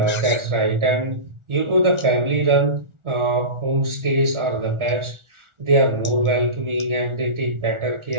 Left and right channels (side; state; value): left; late; 1.4 ms